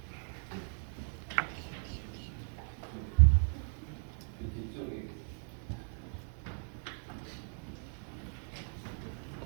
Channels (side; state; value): left; silent; 53 dB below the other